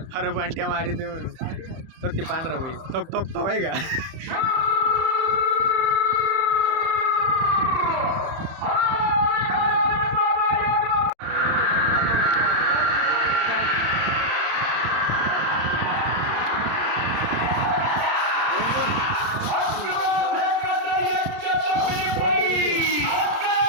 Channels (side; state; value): left; late; 30 ms